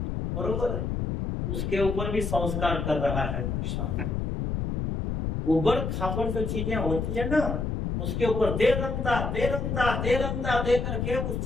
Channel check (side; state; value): left; noise; rumble, 2 dB below the sound